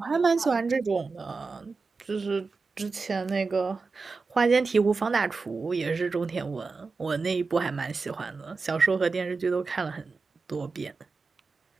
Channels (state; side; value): quieter; left; 4.3 dB